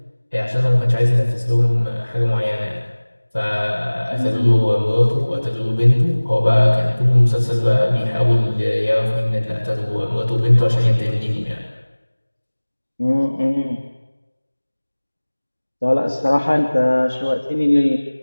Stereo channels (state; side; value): inverted; both; correlation -1.00